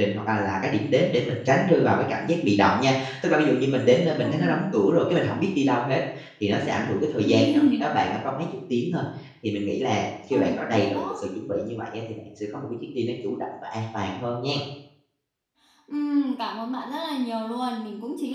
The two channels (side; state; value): both; identical; correlation 1.00